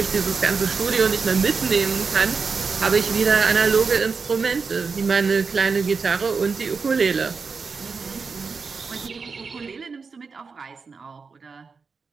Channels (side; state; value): left; quieter; 5.0 dB